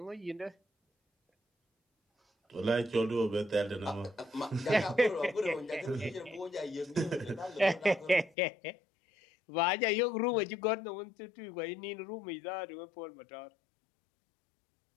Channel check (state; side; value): drops out; right; at 8.3 s